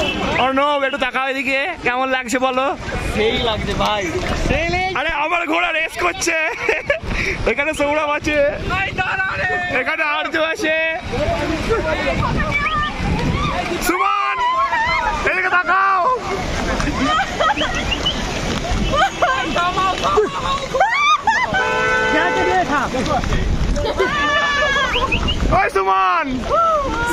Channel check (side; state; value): both; identical; correlation 1.00